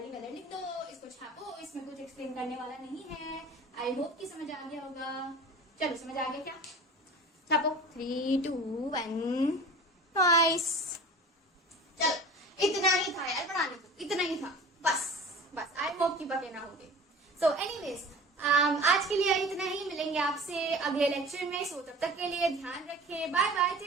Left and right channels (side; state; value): both; normal; correlation 0.39